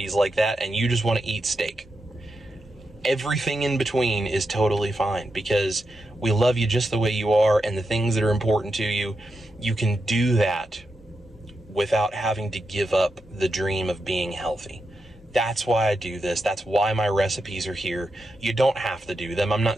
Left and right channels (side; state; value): both; normal; correlation 0.87